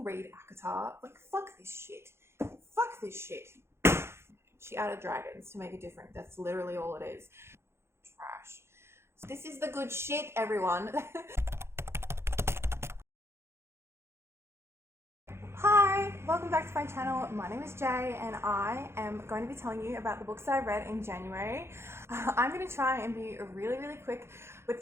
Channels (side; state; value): left; late; 0.12 ms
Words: read ACOTAR. Like, fuck this shit. Fuck this shit. She added dragons to make it different. That's literally all it is. Trash. This is the good shit, everyone. Hi, welcome back to my channel. My name is Jay and I am going to be telling you about the books that I read in January. I'm going to try and be really quick with